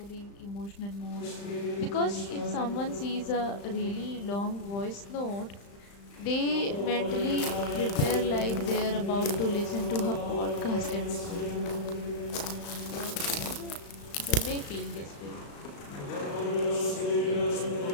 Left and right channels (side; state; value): right; late; 35 ms